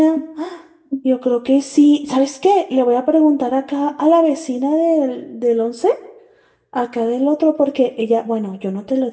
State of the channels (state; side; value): identical; both; correlation 1.00